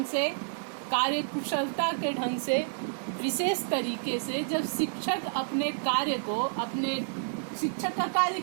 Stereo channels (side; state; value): left; silent; digital silence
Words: से, कार्यकुशलता के ढंग से, विशेष तरीके से जब शिक्षक अपने कार्य को, अपने शिक्षक का कार्य